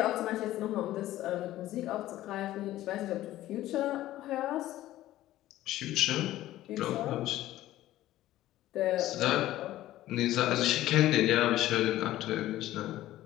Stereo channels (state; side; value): quieter; right; 14.8 dB